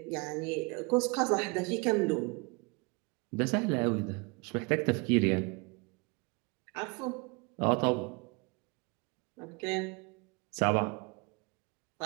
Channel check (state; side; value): quieter; left; 30.4 dB